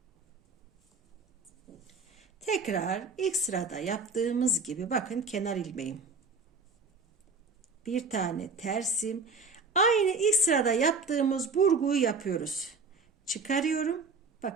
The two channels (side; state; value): left; quieter; 4.1 dB